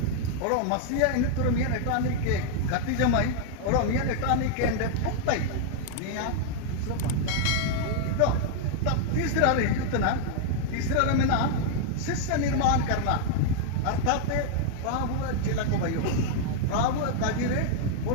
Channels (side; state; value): both; different; correlation -0.01